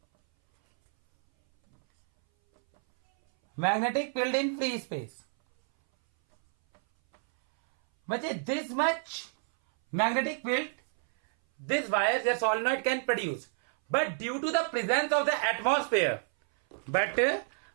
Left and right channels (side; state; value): left; silent; 58 dB below the other